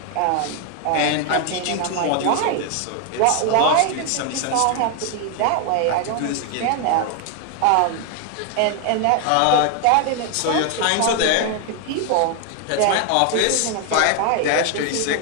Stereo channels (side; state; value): both; different; correlation 0.01